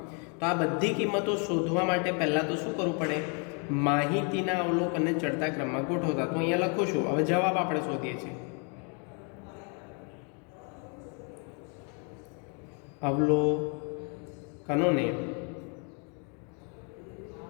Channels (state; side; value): quieter; right; 37.7 dB